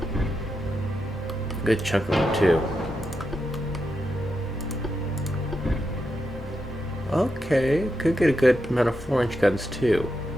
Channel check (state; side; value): normal; both; correlation 0.86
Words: Good chunk of them too. Okay, could get a good amount of 4-inch guns too.